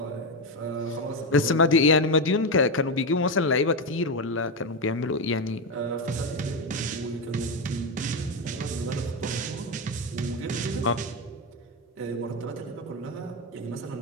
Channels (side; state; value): both; normal; correlation 0.10